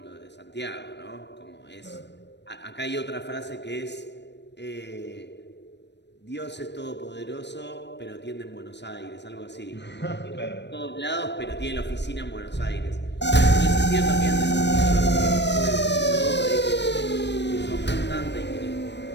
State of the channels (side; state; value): right; late; 0.50 ms